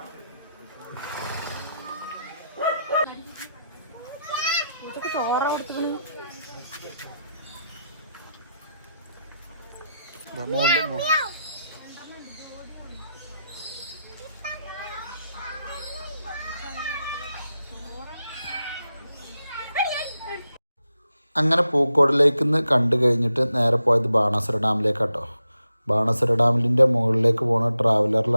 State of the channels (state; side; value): inverted; both; correlation -0.85